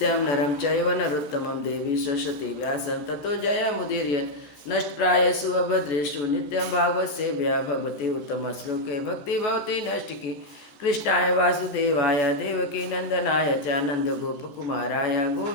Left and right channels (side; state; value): right; late; 14 ms